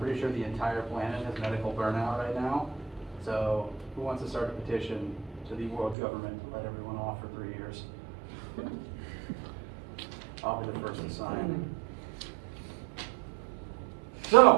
sure the entire planet has medical burnout right now. So who wants to start a petition to the world government to let everyone off for 3 years? I'll be the first to sign.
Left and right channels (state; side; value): drops out; left; at 6.0 s